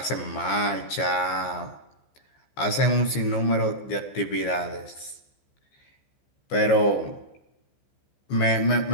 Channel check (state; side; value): late; right; 15 ms